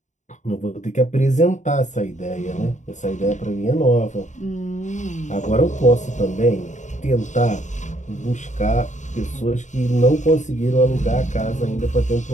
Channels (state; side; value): late; right; 0.35 ms